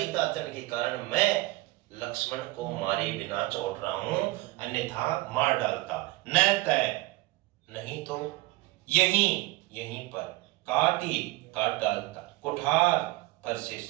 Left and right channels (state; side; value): quieter; left; 20.5 dB